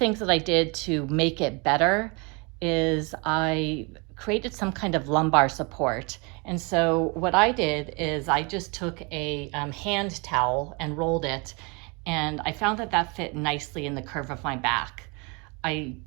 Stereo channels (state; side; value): quieter; left; 30.5 dB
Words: that I did to make it better is I created some kind of lumbar support. And so what I did is I just took a hand towel and rolled it, and I found that that fit nicely in the curve of my back. I